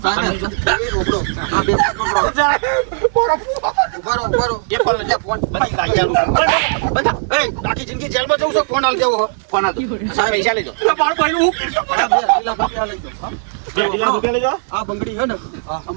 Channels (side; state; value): left; silent; 66 dB below the other